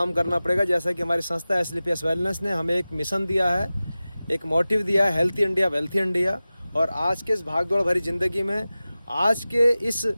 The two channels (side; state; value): both; inverted; correlation -0.96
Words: करना पड़ेगा। जैसा कि हमारी संस्था SLPS वेलनेस ने हमें एक मिशन दिया है, एक मोटिव दिया है, हेल्थी इंडिया वेल्थी इंडिया। और आज के इस भागदौड़ भरी ज़िंदगी में, आज के इस